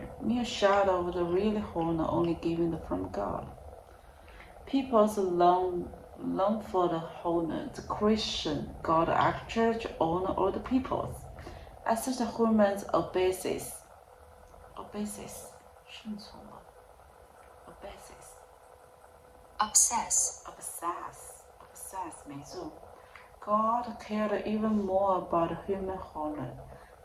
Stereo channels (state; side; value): identical; both; correlation 1.00